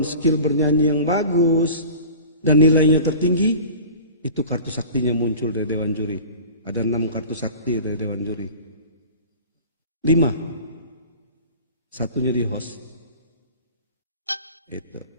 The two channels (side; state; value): both; inverted; correlation -0.40